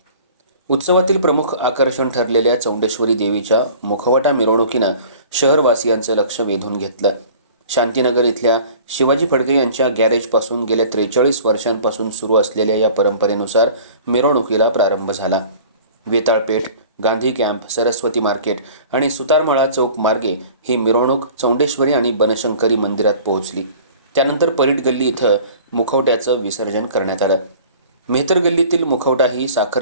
उत्सवातील प्रमुख आकर्षण ठरलेल्या चौंडेश्वरी देवीच्या मुखवटा मिरवणुकीनं शहरवासियांचं लक्ष वेधून घेतलं. शांतीनगर इथल्या शिवाजी फडके यांच्या गॅरेजपासून गेल्या 43 वर्षांपासून सुरू असलेल्या या परंपरेनुसार मिरवणुकीला प्रारंभ झाला. वेताळपेठ, गांधी कॅम्प, सरस्वती मार्केट आणि सुतारमळा चौक मार्गे ही मिरवणूक चौंडेश्वरी आणि बनशंकरी मंदिरात पोहोचली. त्यानंतर परीट गल्ली इथं मुखवट्याचं विसर्जन करण्यात आलं. मेहतर गल्लीतील मुखवटा ही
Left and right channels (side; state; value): both; inverted; correlation -0.46